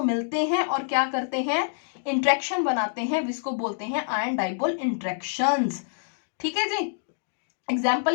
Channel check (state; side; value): silent; right; digital silence